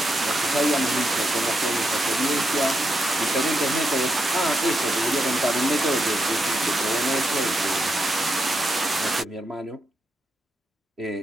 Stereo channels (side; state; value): both; normal; correlation 0.83